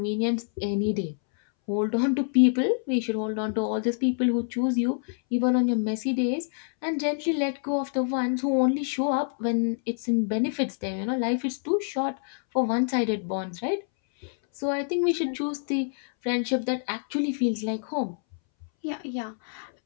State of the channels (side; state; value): right; silent; 60 dB below the other